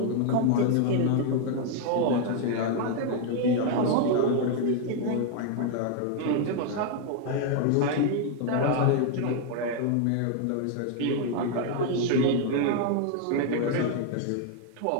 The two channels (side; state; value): both; different; correlation 0.00